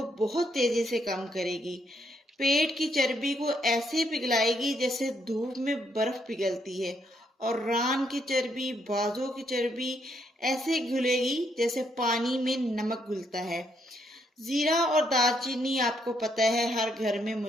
बहुत तेजी से कम करेगी। पेट की चर्बी को ऐसे पिघलाएगी जैसे धूप में बर्फ पिघलती है, और रान की चर्बी, बाजों की चर्बी ऐसे घुलेगी जैसे पानी में नमक घुलता है। जीरा और दालचीनी आपको पता है हर घर में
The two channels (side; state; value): both; normal; correlation 0.74